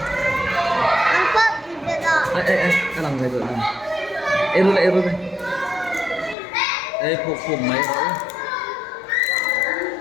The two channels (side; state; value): right; drops out; at 6.4 s